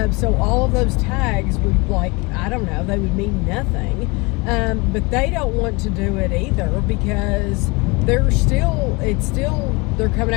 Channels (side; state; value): right; quieter; 26.6 dB